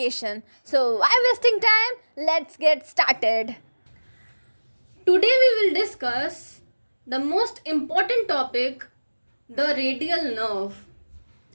So why wasting time? Let's get started. Today we will discuss the most important topic, the radial nerve.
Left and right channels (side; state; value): both; inverted; correlation -1.00